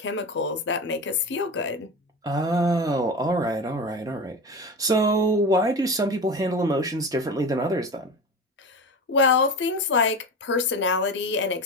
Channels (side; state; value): both; normal; correlation 0.27